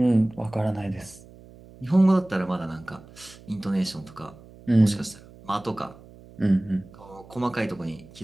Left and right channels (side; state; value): right; noise; hum, 21 dB below the sound